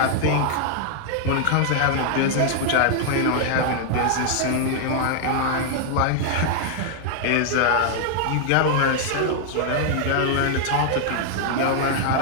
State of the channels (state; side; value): different; both; correlation -0.01